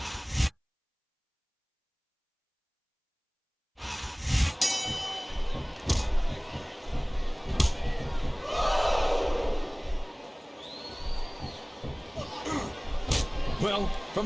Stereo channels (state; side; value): identical; both; correlation 1.00